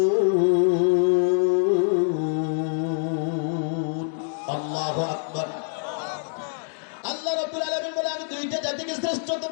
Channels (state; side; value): silent; right; digital silence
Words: লিয়াবুদুন। আল্লাহু আকবার। আল্লাহ রাব্বুল আলামিন বলে আমি দুইটা জাতিকে শ্রেষ্ঠত্ব